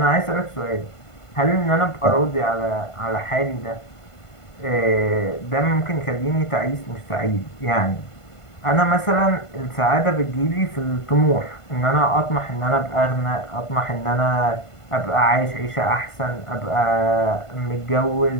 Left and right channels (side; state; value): right; late; 1.5 ms